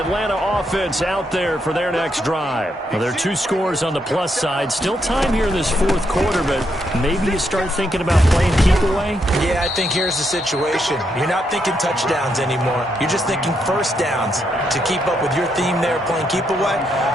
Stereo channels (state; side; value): normal; both; correlation 0.78